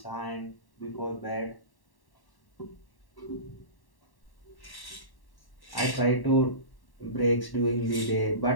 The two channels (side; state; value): right; late; 1.1 ms